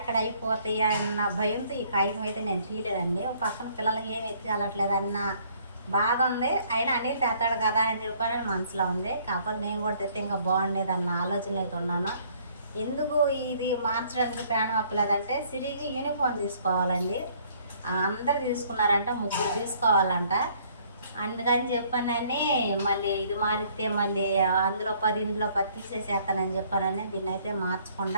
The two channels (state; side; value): inverted; both; correlation -0.61